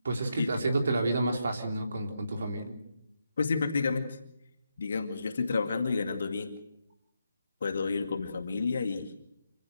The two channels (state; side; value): inverted; both; correlation -0.83